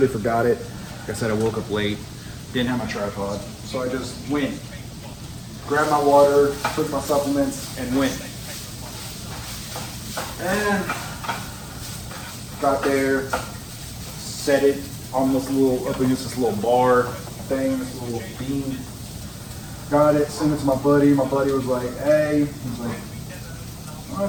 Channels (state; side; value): identical; both; correlation 1.00